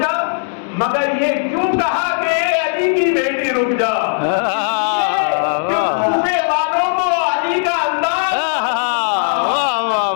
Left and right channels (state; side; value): silent; right; digital silence